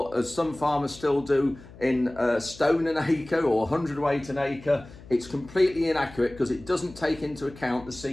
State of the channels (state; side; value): noise; left; hum, 19 dB below the sound